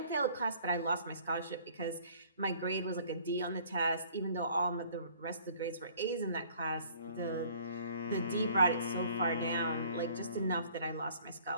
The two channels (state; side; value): inverted; both; correlation -0.56